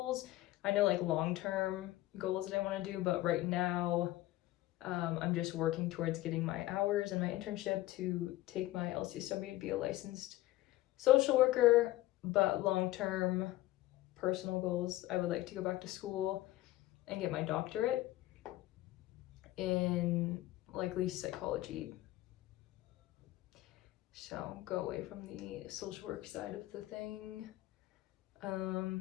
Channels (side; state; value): right; quieter; 16.6 dB